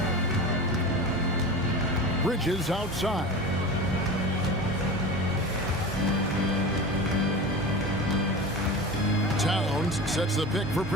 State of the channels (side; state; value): both; normal; correlation 0.30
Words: Bridges outside. Towns sets the pick for